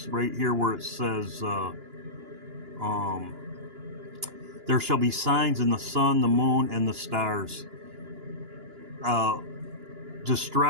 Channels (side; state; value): left; late; 2.9 ms